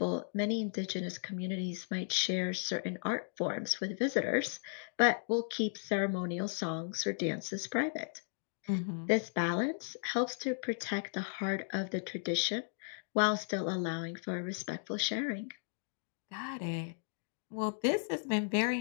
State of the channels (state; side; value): silent; right; digital silence